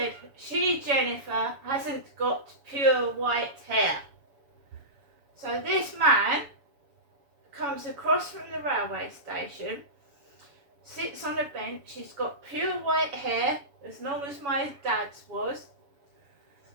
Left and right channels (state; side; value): late; left; 7.1 ms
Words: she, Jennifer, hasn't got pure white hair. So this man comes across from the railway station, sits on a bench, he's got pure white hair, as long as my dad's was.